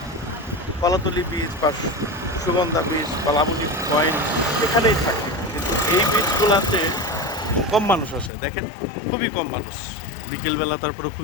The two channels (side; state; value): right; drops out; at 8.3 s